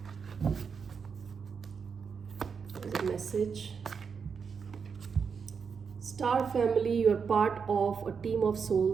as a message. Star family, you are part of a team of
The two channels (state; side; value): quieter; left; 6.0 dB